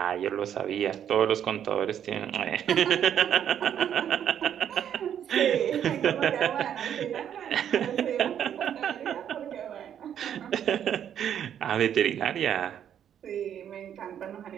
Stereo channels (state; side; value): quieter; left; 9.5 dB